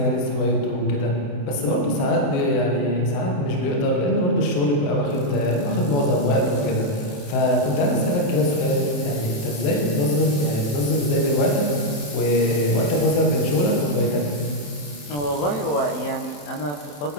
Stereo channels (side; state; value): right; late; 28 ms